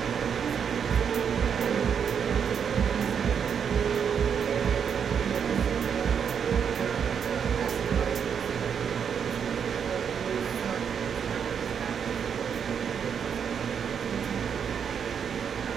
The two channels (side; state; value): left; quieter; 7.4 dB